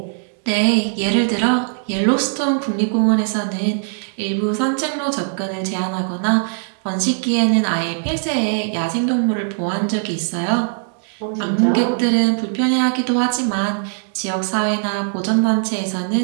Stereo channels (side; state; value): left; silent; digital silence